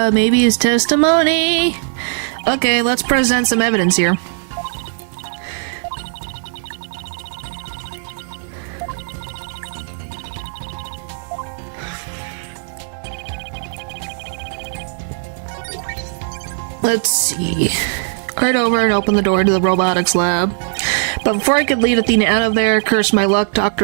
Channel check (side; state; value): left; silent; 67 dB below the other